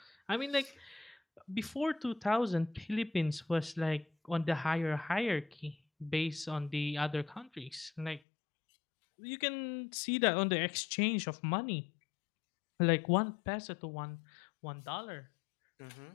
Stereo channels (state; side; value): drops out; right; at 8.2 s